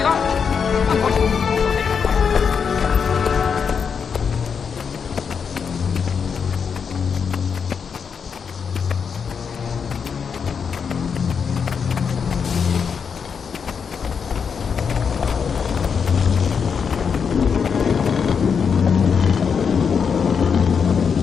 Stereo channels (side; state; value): right; quieter; 6.4 dB